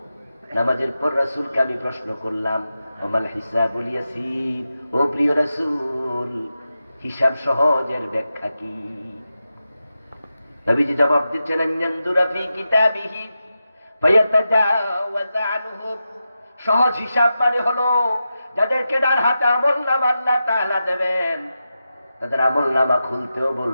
নামাজের পর রাসূলকে আমি প্রশ্ন করলাম, ওমাল হিসাবুল ইয়াসীর, ও প্রিয় রাসূল হিসাব সহজের ব্যাখ্যা কি? নবীজি জবাব দিচ্ছেন, আনয়ানদুরা ফি কিতাবিহি ফায়াতাজাওয়াজ আনহু। সহজ হিসাব মানে হলো যাদেরকে ডান হাতে আমলনামা আল্লাহ তাআলা দেবেন, তাদের আমলনামা খুলতেও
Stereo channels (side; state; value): both; inverted; correlation -0.90